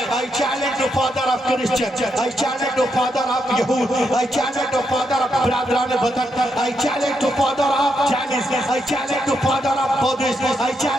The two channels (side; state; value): both; normal; correlation 0.81